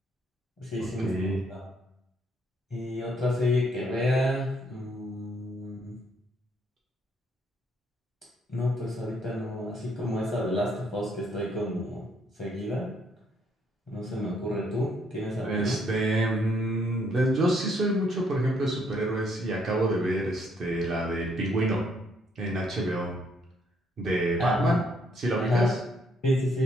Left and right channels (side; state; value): both; normal; correlation 0.70